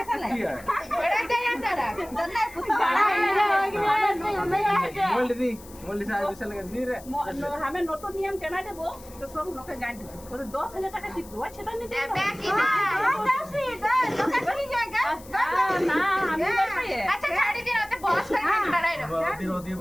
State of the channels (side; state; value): left; noise; hiss, 20 dB below the sound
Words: बड़ा दे यार डरा दन्ना पुता बड़ा मोल्ड से आज विशाल का दी रे हमें नोटो नियम चला देबो तो सब लोग के गांठ और 10,000 টাকা দিব সেটা নিতে बाकी ना ना हमें नहीं अच्छा छाड़ी दिन होते बहुत सारे डरा है होती है